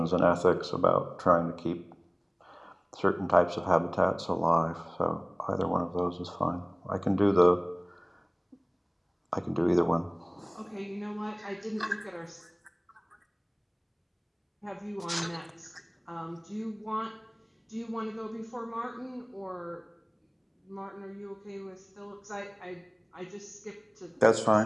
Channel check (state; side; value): identical; both; correlation 1.00